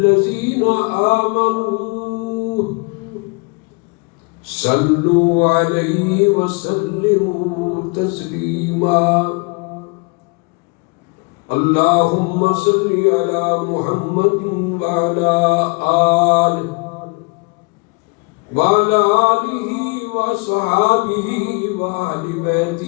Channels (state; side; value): quieter; right; 30.7 dB